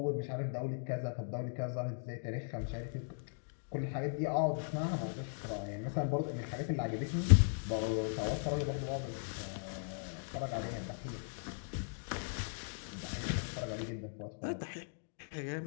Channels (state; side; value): silent; right; digital silence